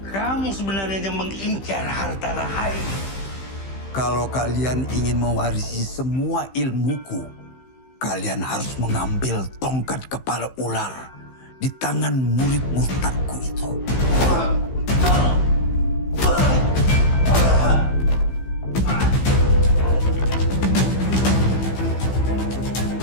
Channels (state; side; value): late; right; 15 ms